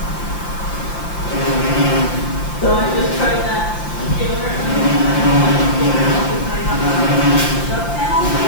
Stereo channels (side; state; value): right; late; 5.8 ms